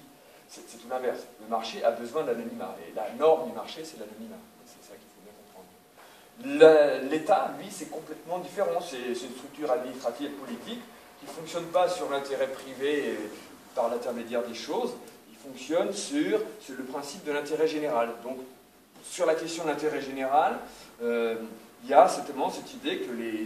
c'est tout l'inverse. Le marché a besoin d'anonymat, et la norme du marché, c'est l'anonymat. C'est ça qu'il faut bien comprendre. L'État, lui, c'est complètement différent, c'est une structure administrative et politique qui ne fonctionne pas sur l'intérêt privé par l'intermédiaire des choses, il fonctionne sur le principe de l'intérêt général. Donc, sur la question de l'intérêt général, il y a certainement cette idée que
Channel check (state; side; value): identical; both; correlation 1.00